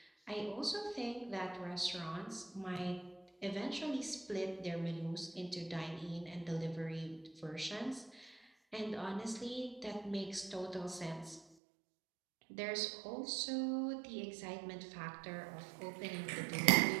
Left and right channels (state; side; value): drops out; left; at 11.5 s